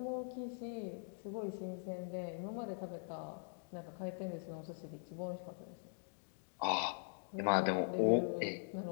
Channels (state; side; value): silent; right; digital silence